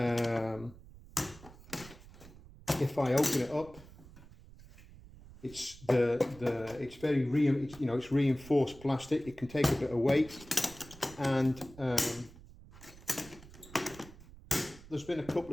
if I open it up, it's it's very it's reinforced plastic. It can take a bit of weight, and there's been a couple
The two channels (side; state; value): right; noise; rumble, 19 dB below the sound